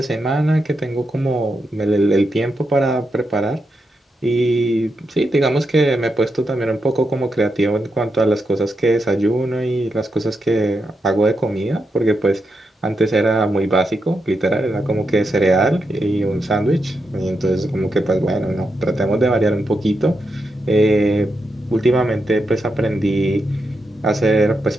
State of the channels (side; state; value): both; normal; correlation 0.85